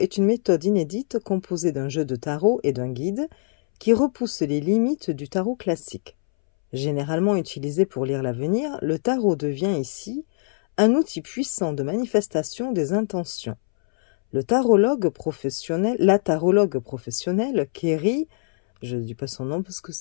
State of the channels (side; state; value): right; silent; 63 dB below the other